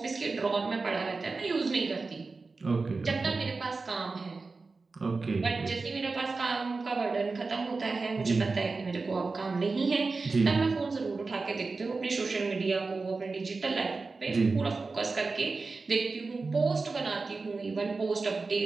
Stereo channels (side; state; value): left; quieter; 4.0 dB